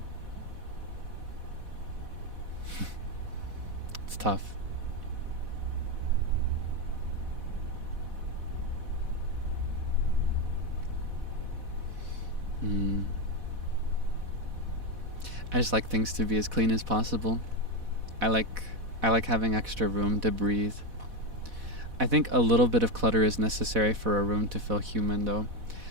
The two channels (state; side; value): late; left; 4.1 ms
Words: It's tough. I just like things to be as clean as possible. I like having extra room to breathe. I think a little bit of clutter is necessary for a room to feel human, though.